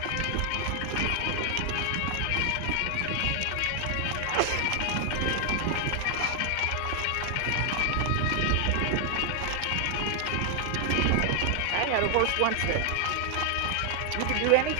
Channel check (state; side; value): different; both; correlation 0.00